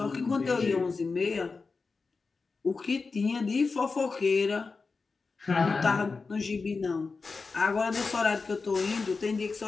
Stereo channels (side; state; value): right; quieter; 4.3 dB